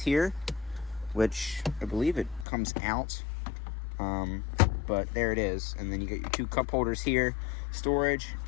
which I believe it comes out. But there it is. And then you get your 2 cup holders here, storage,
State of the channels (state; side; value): drops out; right; at 2.5 s